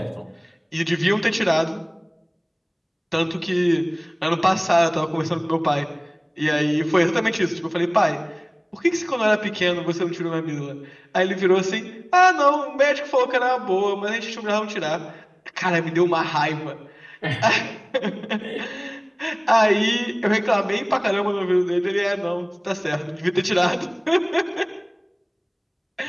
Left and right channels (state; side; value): identical; both; correlation 1.00